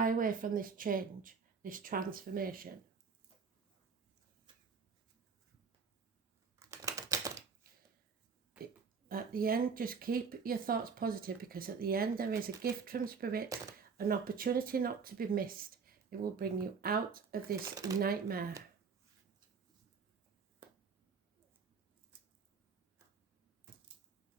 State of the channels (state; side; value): quieter; left; 5.5 dB